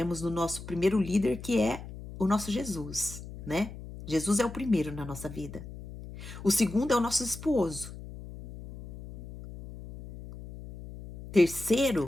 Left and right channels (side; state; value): left; noise; hum, 12 dB below the sound